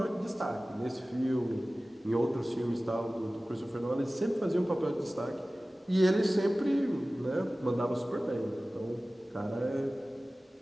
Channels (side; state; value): both; normal; correlation 0.97